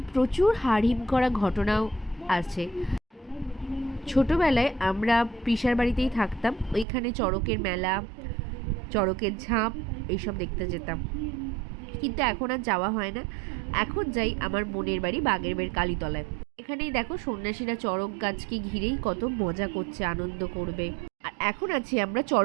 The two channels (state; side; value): drops out; left; at 6.9 s